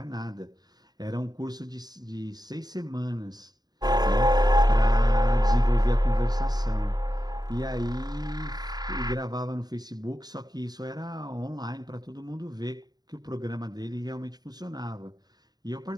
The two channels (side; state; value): left; late; 0.19 ms